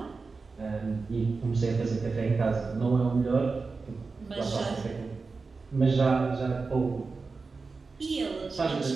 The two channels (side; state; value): left; quieter; 4.3 dB